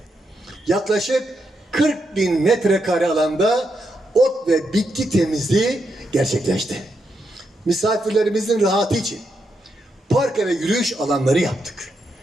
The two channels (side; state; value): both; normal; correlation 0.82